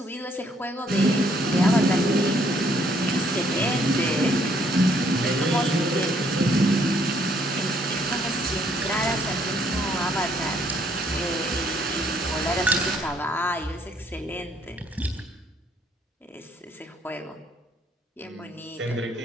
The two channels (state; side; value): normal; both; correlation 0.67